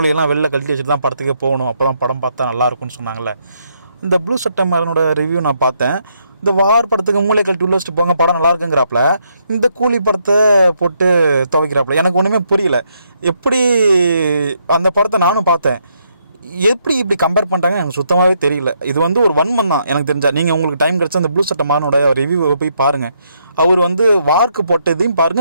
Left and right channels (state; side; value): inverted; both; correlation -0.75